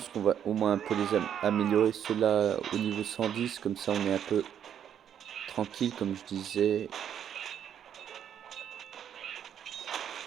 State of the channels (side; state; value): left; quieter; 9.2 dB